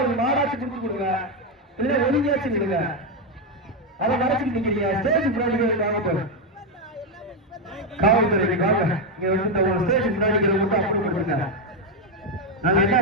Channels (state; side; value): normal; both; correlation 0.05